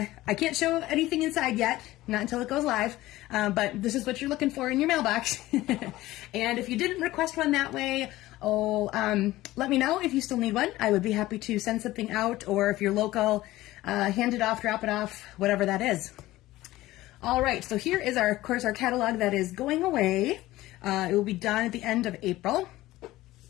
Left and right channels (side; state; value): right; quieter; 17.0 dB